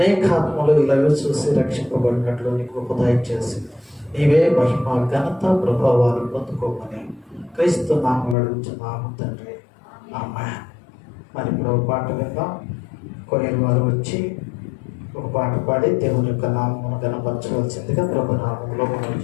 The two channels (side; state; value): right; drops out; at 8.3 s